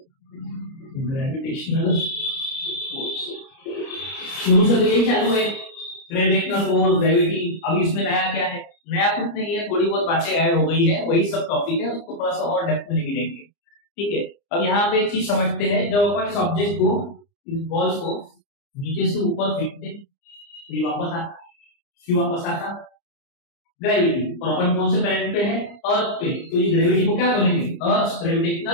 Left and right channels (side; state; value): right; late; 29 ms